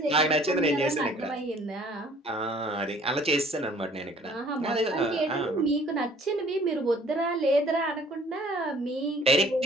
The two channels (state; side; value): normal; both; correlation 0.55